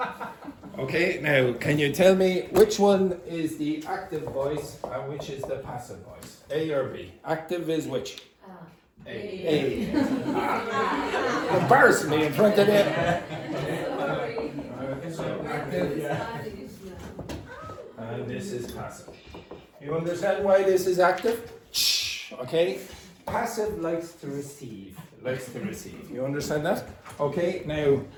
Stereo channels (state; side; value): identical; both; correlation 1.00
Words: Okay, now can you tell me which one is the active voice and which is the passive voice? A or B? Active is which? A. Embarrassing me in front of them. So active. And this is passive. You understand why this is active? Okay. Passive likes to receive. You understand that? Okay. Now,